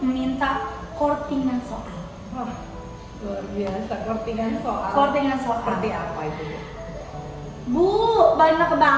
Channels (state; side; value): identical; both; correlation 1.00